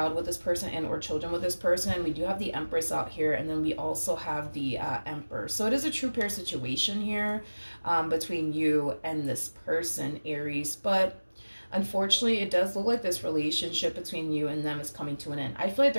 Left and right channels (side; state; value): both; inverted; correlation -1.00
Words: with this person and or children with this person. We do have the Empress out here, and then we also have the Emperor. So it is a true pair situation here between you and this person, Aries. But unfortunately, it does look like this relationship between you and them is coming to an end. I feel like